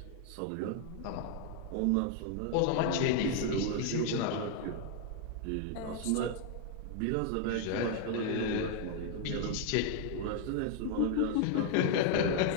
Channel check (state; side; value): different; both; correlation 0.00